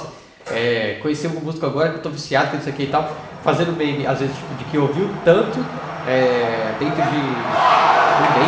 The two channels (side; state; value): both; identical; correlation 1.00